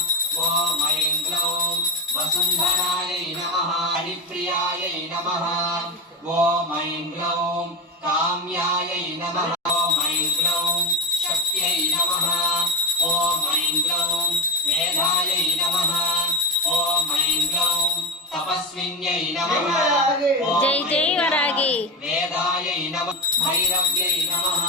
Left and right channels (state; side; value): normal; both; correlation 0.15